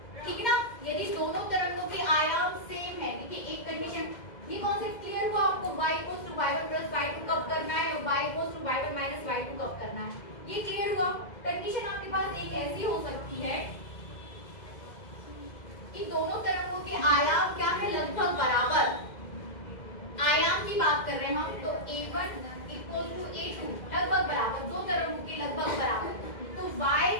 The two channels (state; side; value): late; right; 2.0 ms